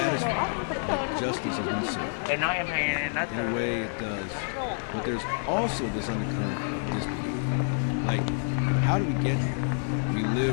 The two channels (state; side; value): silent; right; 59 dB below the other